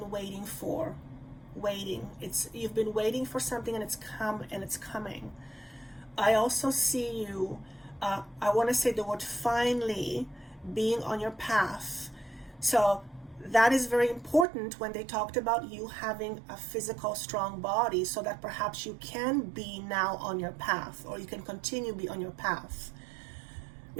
waiting for. You've been waiting for something, and it's coming. I also see you, I want to say the word finally, being on your path. So that is very important when they talked about you having a physical, strong body, so that perhaps you can be now on your path, or you can continue to be on your path.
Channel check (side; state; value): left; drops out; at 14.5 s